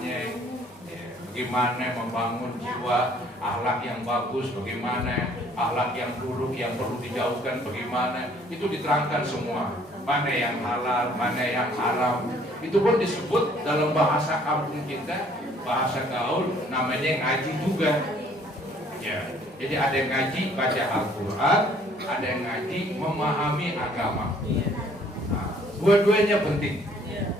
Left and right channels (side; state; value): both; normal; correlation 0.59